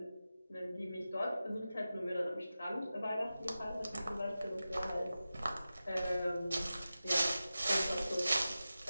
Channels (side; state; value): both; inverted; correlation -0.94